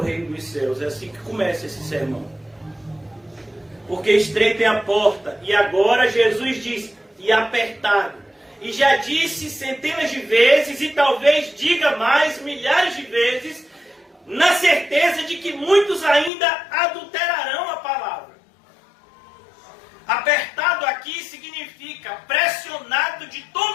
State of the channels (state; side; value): drops out; right; at 16.3 s